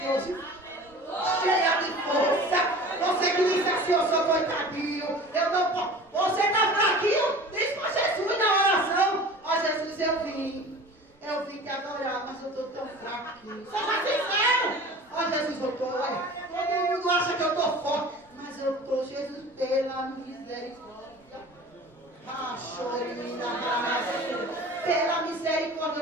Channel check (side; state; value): both; normal; correlation 0.40